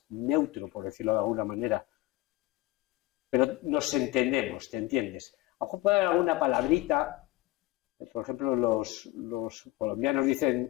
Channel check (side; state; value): right; quieter; 17.7 dB